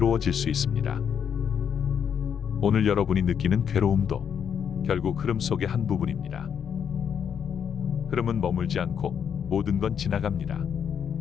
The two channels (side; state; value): right; quieter; 7.8 dB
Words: 수 있습니다. 오늘 여러분이 느끼는 괴로움도 결국 흐름 속의 한 부분입니다. 흐름은 머물지 않고 모든 건 지나갑니다.